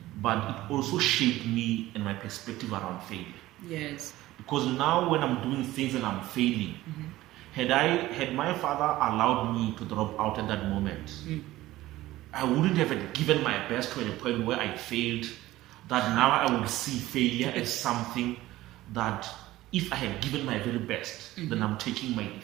but it also shaped me and my perspective around failure. Yes. Because now when I'm doing things and I'm failing, had my father allowed me to drop out at that moment, I wouldn't have given my best to a point where I failed, that now I would see failure as something that if I had given my very best, then I'm taking my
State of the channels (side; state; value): left; quieter; 16.5 dB